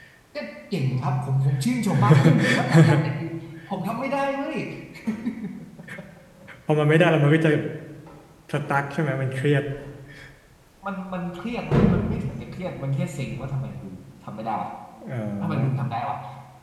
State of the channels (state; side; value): identical; both; correlation 1.00